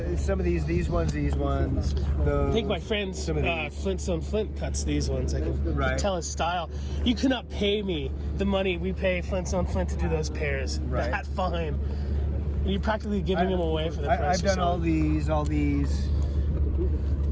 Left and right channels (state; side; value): identical; both; correlation 1.00